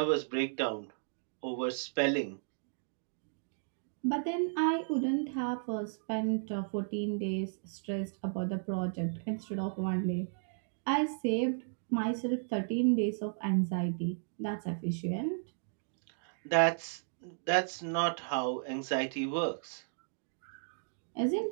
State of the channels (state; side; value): silent; left; digital silence